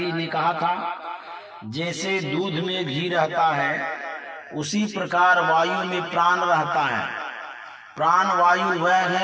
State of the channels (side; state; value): both; identical; correlation 1.00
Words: ने कहा था, जैसे दूध में घी रहता है उसी प्रकार वायु में प्राण रहता है। प्राण वायु वह